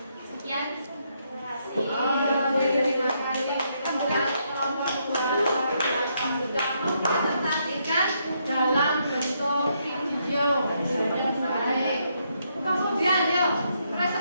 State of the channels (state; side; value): inverted; both; correlation -0.76